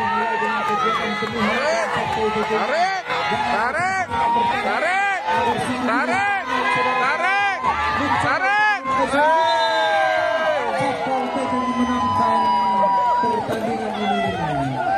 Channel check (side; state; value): both; identical; correlation 1.00